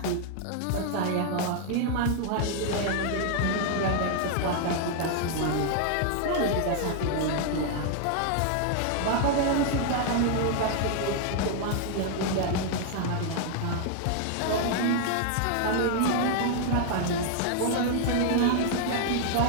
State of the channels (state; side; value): different; both; correlation 0.00